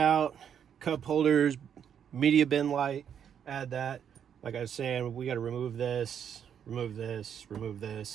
cup holders, media bin light, add that. Like I was saying, we got to remove this, remove this, remove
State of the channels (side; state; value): left; quieter; 8.4 dB